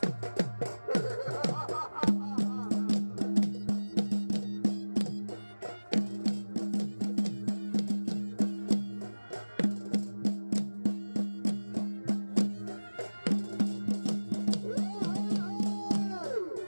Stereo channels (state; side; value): inverted; both; correlation -1.00